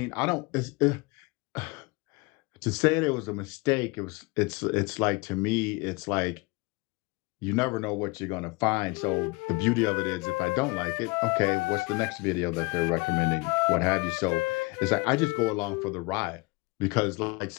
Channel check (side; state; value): right; quieter; 26.3 dB